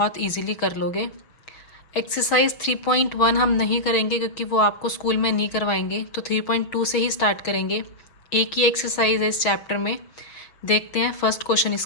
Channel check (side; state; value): right; late; 6.4 ms